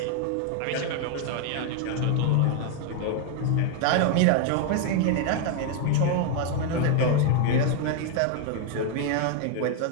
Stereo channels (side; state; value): both; different; correlation 0.00